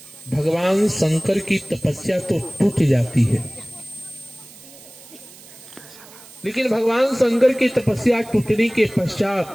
भगवान शंकर की तपस्या तो टूट जाती है, लेकिन भगवान शंकर की तपस्या टूटने के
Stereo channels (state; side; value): noise; right; hiss, 20 dB below the sound